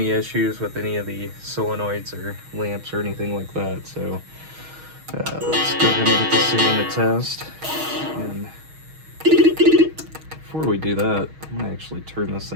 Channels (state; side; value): late; left; 6.3 ms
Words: issues with any of the solenoids or lamps or anything like that. So let's go ahead and get this thing in the test. And before we do that, I'm going to actually turn this